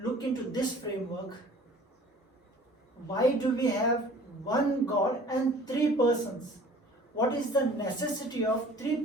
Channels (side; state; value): both; normal; correlation 0.48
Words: look into this framework, why do we have one God and three persons? What is the necessity of three